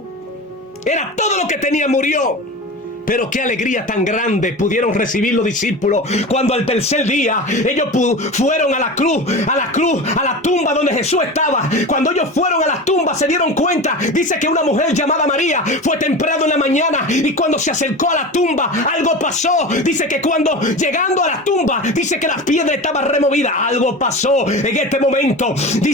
era todo lo que tenía, murió. Pero qué alegría tan grande pudieron recibir los discípulos cuando al tercer día ellos fueron a la cruz, a la tumba donde Jesús estaba. Cuando ellos fueron a la tumba se dieron cuenta, dice que una mujer llamada María fue temprano en la mañana, y cuando se acercó a la tumba algo pasó. Dice que cuando llegando a la tumba, dice que la piedra estaba removida. Algo pasó en este momento.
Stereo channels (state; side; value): normal; both; correlation 0.29